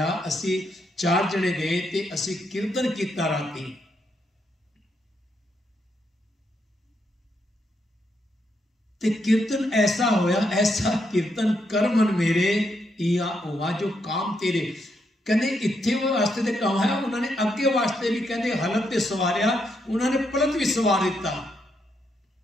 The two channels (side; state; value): both; normal; correlation 0.79